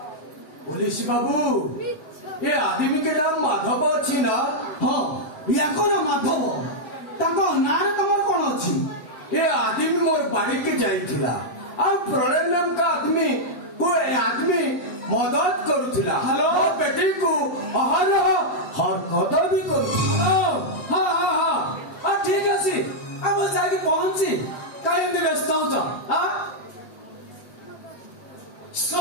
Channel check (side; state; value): right; late; 8.3 ms